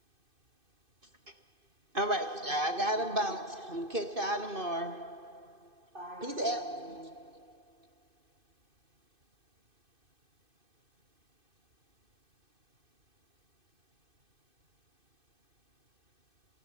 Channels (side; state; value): left; late; 2.5 ms